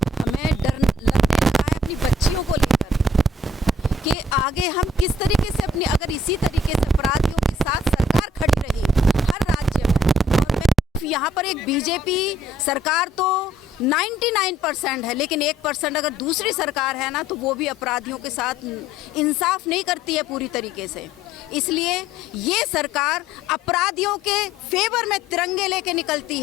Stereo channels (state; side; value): normal; both; correlation 0.60